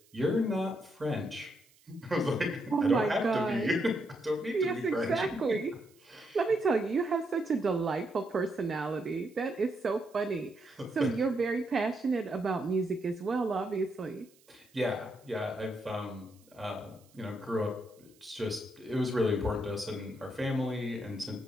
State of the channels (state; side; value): noise; right; hiss, 30 dB below the sound